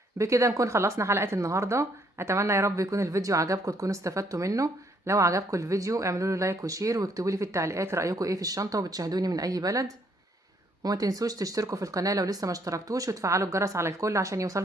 بكده نكون خلصنا حلقة النهاردة. اتمنى يا رب يكون الفيديو عجبكم، تكونوا استفدتوا منه. لو عجبكم الفيديو اعملوا له لايك وشير، واكتبوا لي في التعليقات رأيكم ايه في الشنطة، وبتشاهدوني من اي بلد. وما تنسوش تشتركوا في القناة لو لسه ما اشتركتوش، وتفعلوا الجرس على الكل عشان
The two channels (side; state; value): both; normal; correlation 0.68